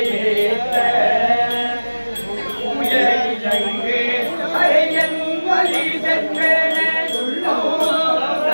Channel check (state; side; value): inverted; both; correlation -1.00